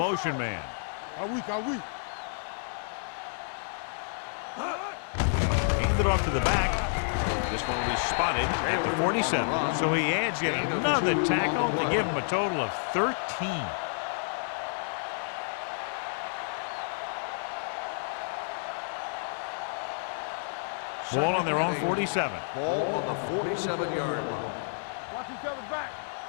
man. Are we? Hands it off to the back. This one will be spotted at the 47. So he adds yet another tackle to give him a total of 13. Ball on their own 47. Ball on the 47-yard line. Watch each other back.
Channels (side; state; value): right; silent; digital silence